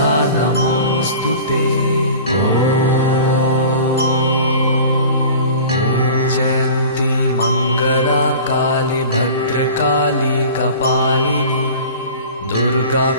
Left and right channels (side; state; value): both; inverted; correlation -0.40